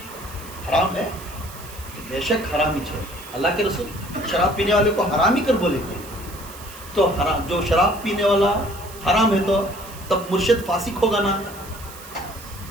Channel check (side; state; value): right; noise; hiss, 17 dB below the sound